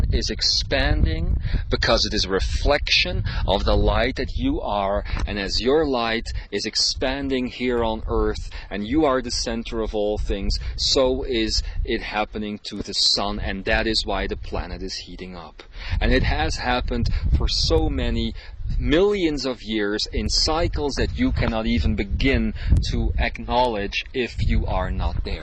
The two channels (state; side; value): identical; both; correlation 1.00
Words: is expanding because it is a reflection of the light that you are, and as your light is expanding here on Earth and you are the center of all things, so is it happening to the sun, and that is why the planet is heating up. And it has happened for so many millions of years in cycles that you cannot even begin to acknowledge if you are not